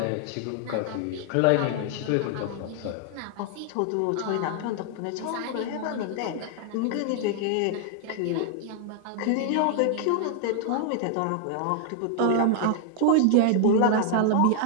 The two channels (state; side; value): different; both; correlation 0.00